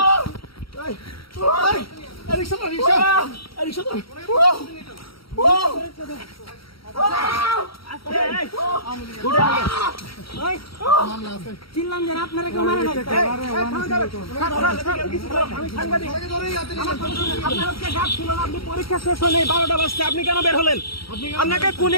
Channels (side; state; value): right; late; 0.75 ms